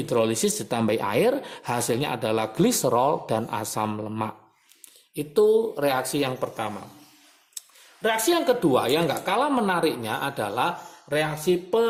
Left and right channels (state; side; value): identical; both; correlation 1.00